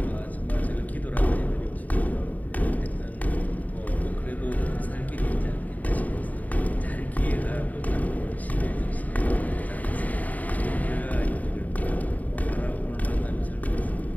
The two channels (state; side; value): late; right; 0.075 ms